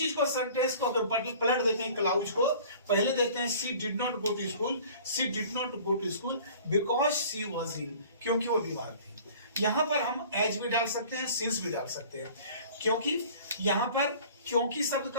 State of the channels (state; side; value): inverted; both; correlation -0.47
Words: को सेंटेंस को अगर पलट देते हैं, क्लाउज को पहले देते हैं she did not go to school, she did not go to school because she was ill, क्योंकि वो बीमार थी। यहां पर हम एज भी डाल सकते हैं, सिंस भी डाल सकते हैं, क्योंकि यहां पर क्योंकि शब्द